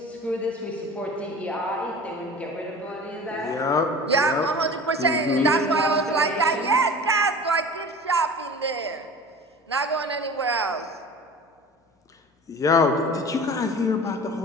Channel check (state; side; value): normal; both; correlation 0.38